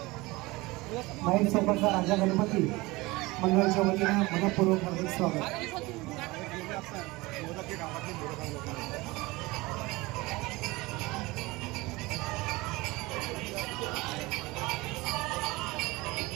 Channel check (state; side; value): quieter; left; 22.0 dB